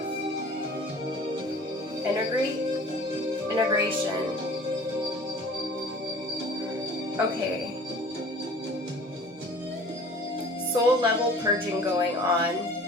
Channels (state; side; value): normal; both; correlation 0.46